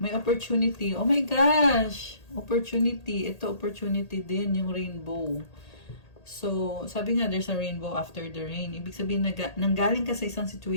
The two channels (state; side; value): late; right; 1.8 ms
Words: opportunity. Oh my gosh! Opportunity. Ito opportunity din, yung rainbow. So, sabi nga, there's a rainbow after the rain. Ibig sabihin, nanggaling ka sa isang